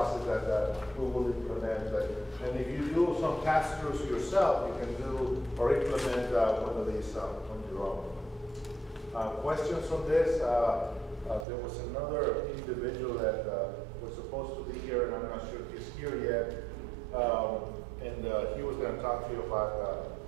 that we will implement. And if you do some pass-throughs yourself, you can do or implement one of these on your own. Questions on this? There was another individual that was supposed to be here, and I'm not sure if he's here yet. And he was going to talk to you about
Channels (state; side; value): drops out; left; at 11.5 s